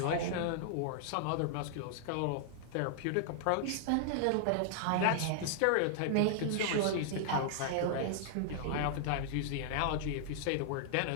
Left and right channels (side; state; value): both; different; correlation -0.01